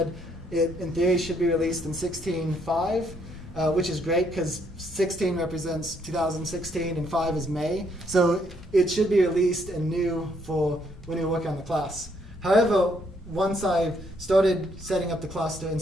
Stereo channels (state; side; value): normal; both; correlation 0.70